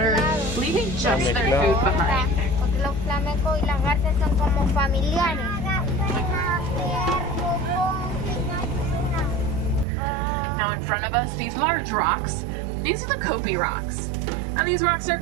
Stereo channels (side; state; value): left; drops out; at 9.9 s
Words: leaving just their food behind. Los flamencos y las garzas son como familiares. Now in front of us, these large rocks, these are the Kopi rocks. And these rocks are